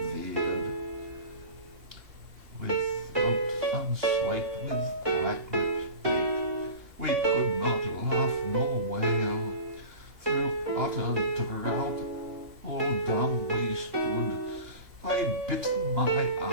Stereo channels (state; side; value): late; left; 2.9 ms